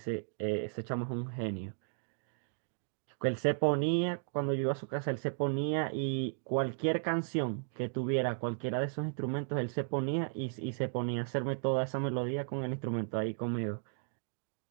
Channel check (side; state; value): left; silent; digital silence